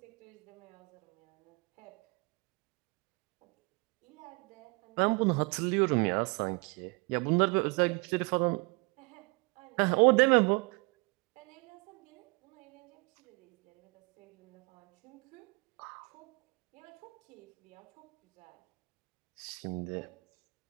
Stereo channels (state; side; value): quieter; left; 29.7 dB